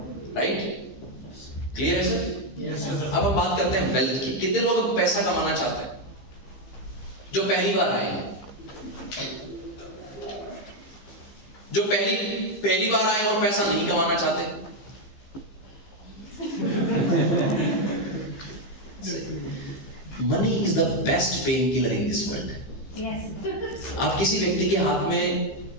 राइट। क्लियर है सर? Yes sir. अब हम बात करते हैं वेल्थ की। कितने लोग अब पैसा कमाना चाहते हैं जो पहली बार आए हैं? जो पहली बार आए और पैसा नहीं कमाना चाहते? Money is the best pain killer in this world. आप किसी व्यक्ति के हाथ में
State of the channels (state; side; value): late; right; 15 ms